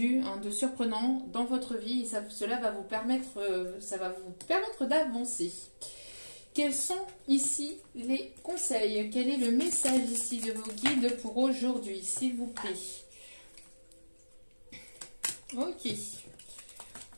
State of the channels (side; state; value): both; inverted; correlation -1.00